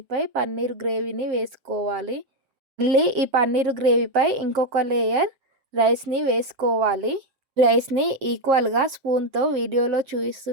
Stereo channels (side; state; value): left; late; 7.6 ms